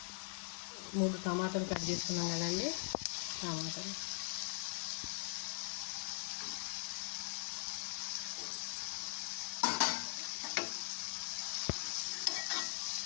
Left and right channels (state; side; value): silent; right; 50 dB below the other